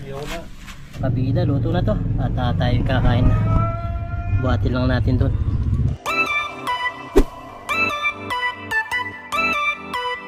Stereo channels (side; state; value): both; identical; correlation 1.00